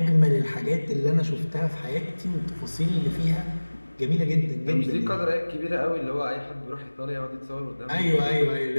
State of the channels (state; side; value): inverted; both; correlation -1.00